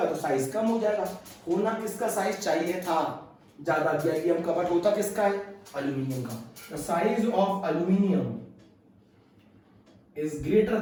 तो साइज कम हो जाएगा। होना किसका साइज चाहिए था ज्यादा, गैलियम का, बट होता किसका है, एल्यूमिनियम का। The size of aluminium is greater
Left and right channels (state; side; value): identical; both; correlation 1.00